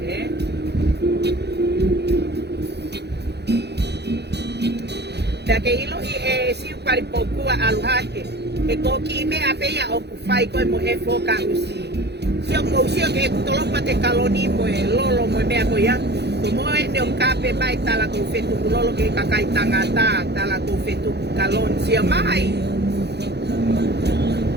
Dake ilo i si pari pokua aluhake e koki me apeia o kufai koe mo e foka usi sio mo usio ke tolopa te kaloni mo e lolo mo mea koia to mo e ne o kape mai tala ko fetu lolo ke kakai tangata tala ko fetu kalon sio mai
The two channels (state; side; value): late; left; 0.49 ms